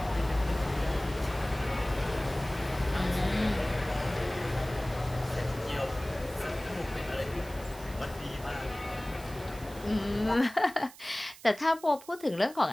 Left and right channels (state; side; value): noise; right; hiss, 19 dB below the sound